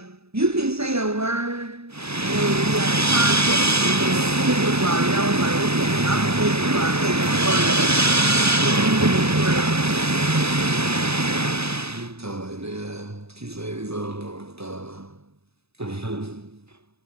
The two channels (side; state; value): left; late; 0.79 ms